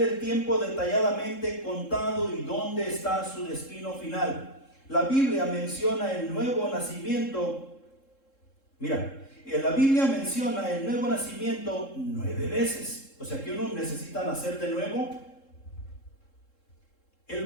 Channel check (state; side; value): late; right; 3.7 ms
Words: el tiempo detalladamente contado y dónde está su destino final. La Biblia menciona el nuevo nacimiento. Mira, la Biblia menciona el nuevo nacimiento 9 veces. O sea que uno necesita nacer de nuevo. El